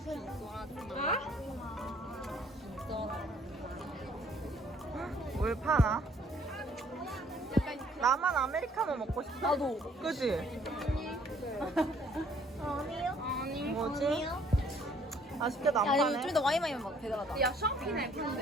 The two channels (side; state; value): both; normal; correlation 0.61